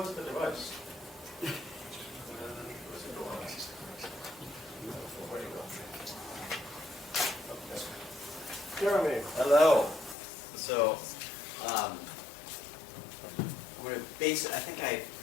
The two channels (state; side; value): drops out; right; at 10.2 s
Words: the device? Jeremy. Hello. So, I'm going to base it,